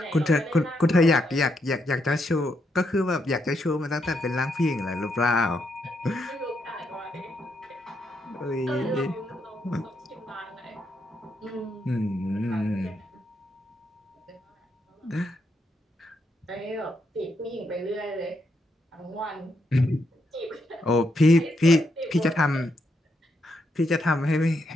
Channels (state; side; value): normal; both; correlation 0.79